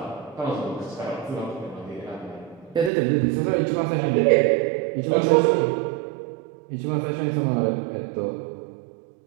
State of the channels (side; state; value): left; drops out; at 2.9 s